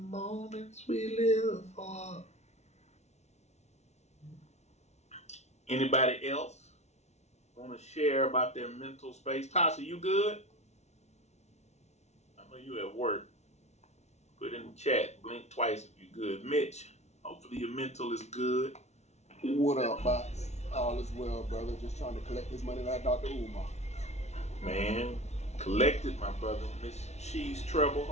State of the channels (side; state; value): right; late; 0.32 ms